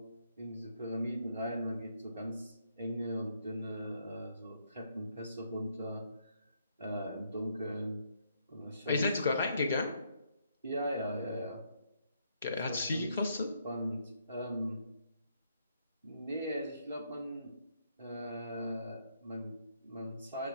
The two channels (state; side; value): inverted; both; correlation -0.73